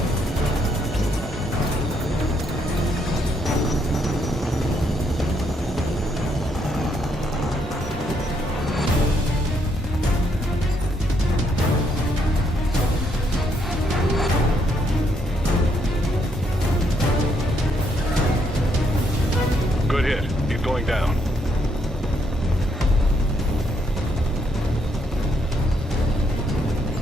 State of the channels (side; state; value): both; normal; correlation 0.74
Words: Good hit. He's going down.